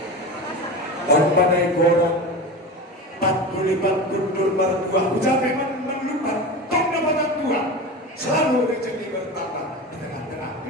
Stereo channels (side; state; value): both; normal; correlation 0.27